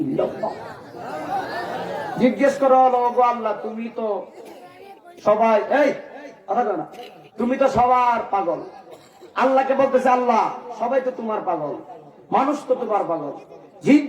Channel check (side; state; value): both; identical; correlation 1.00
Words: ইল্লাল্লাহ। জিজ্ঞেস করো, ওগো আল্লাহ তুমি তো সবাই, এই কথা কও না, তুমি তো সবার পাগল। আল্লাহকে বলতেছে আল্লাহ সবাই তো তোমার পাগল, মানুষ তো তোমার পাগল, জিন